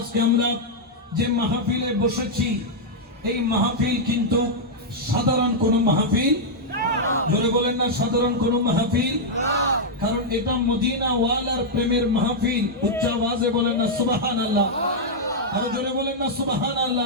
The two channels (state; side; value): normal; both; correlation -0.05